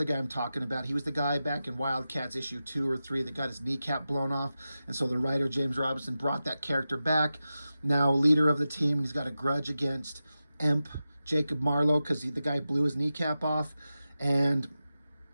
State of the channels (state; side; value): inverted; both; correlation -0.92